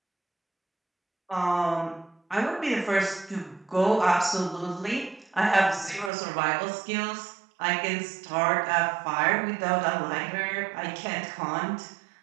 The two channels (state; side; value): drops out; left; at 6.1 s